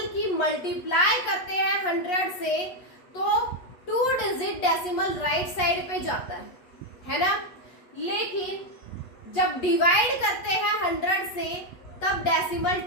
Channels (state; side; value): late; right; 8.3 ms